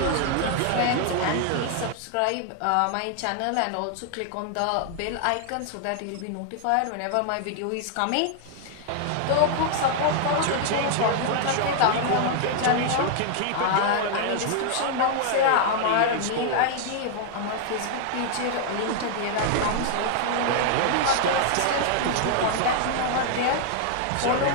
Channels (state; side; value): different; both; correlation 0.00